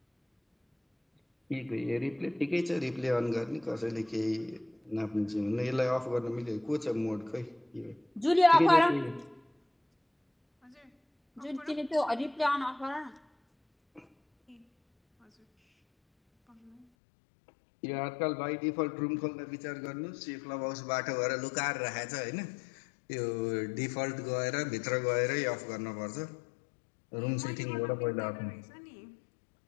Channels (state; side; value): drops out; right; at 16.9 s